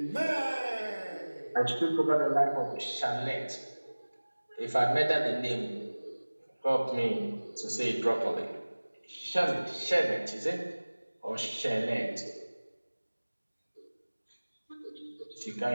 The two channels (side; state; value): both; inverted; correlation -1.00